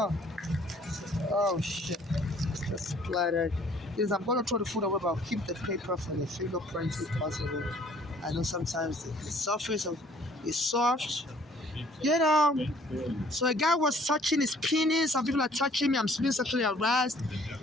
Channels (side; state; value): both; normal; correlation 0.58